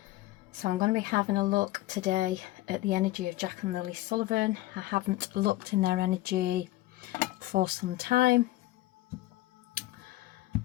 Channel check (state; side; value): quieter; right; 17.1 dB